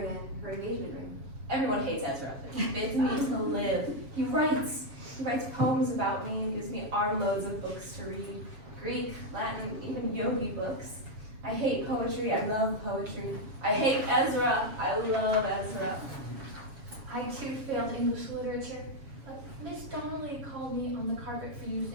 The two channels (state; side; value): late; left; 7.2 ms